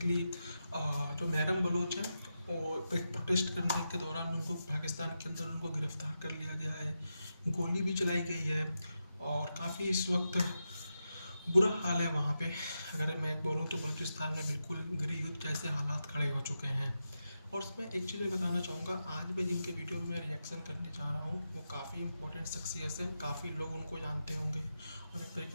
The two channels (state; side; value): inverted; both; correlation -0.88